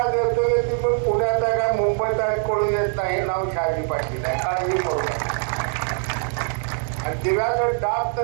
देतोय की तुम्ही पुण्यात आहे का मुंबईत आहे कळून येत नाही. नाव शहाजी पाटील आहे. काळजी करू नका. आणि दिव्याचं डाब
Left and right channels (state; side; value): silent; left; 55 dB below the other